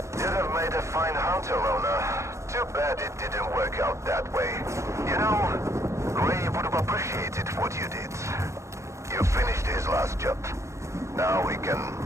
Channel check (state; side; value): late; left; 0.14 ms